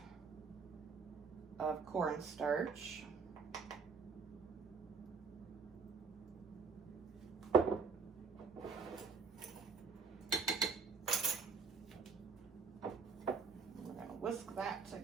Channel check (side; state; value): left; quieter; 5.1 dB